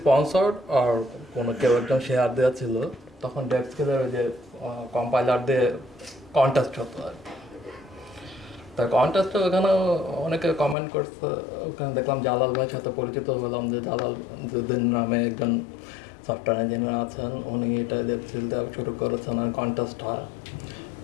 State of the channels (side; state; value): right; drops out; at 10.8 s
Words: স্পন্সর্ড আর কোনো কেউ একজন শেয়ার দেওয়া ছিল, তখন ডেভস্কিলের ওই যে কম্পাইলার দিয়ে কন্টেস্ট হতো আর কি। তা কন্টেস্টে ওখানে অনেকে কমেন্ট করছে, ওখানে দেখলাম জালাল ভাইয়ের সাথে পরিচিত হলাম, যে জালাল জুদ্দিন নামে একজন সফটওয়্যার ইঞ্জিনিয়ার আছেন, উনি এটা ডেভস্কিল দেওয়া শুরু করেছেন আর কন্টেস্ট হয়।